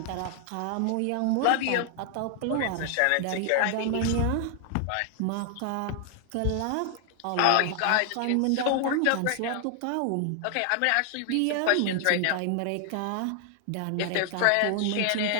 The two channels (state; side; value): different; both; correlation 0.00